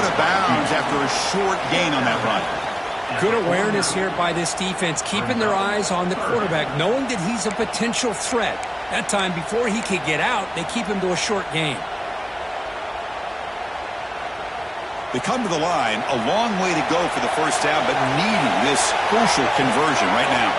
of bounds after a short gain on that run. Good awareness here by this defense, keeping their eyes on the quarterback, knowing that he's a potential threat. That time, before he could get out, they keep him to a short gain. They come to the line, a long way to go for the first down, but needing this crucial conversion right now.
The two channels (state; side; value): identical; both; correlation 1.00